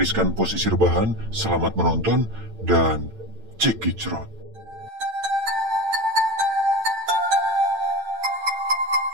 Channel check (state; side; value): late; left; 8.9 ms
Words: posisi rebahan, selamat menonton, dan cekicrot.